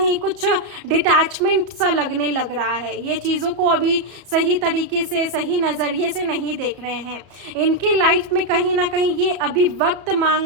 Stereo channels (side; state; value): left; late; 34 ms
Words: कुछ डिटैचमेंट सा लगने लग रहा है, ये चीजों को अभी सही तरीके से, सही नजरिए से नहीं देख रहे हैं। इनकी लाइफ में कहीं ना कहीं ये अभी वक्त मांग